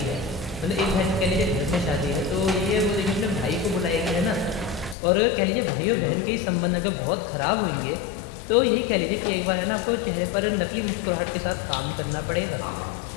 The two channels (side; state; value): right; drops out; at 5.0 s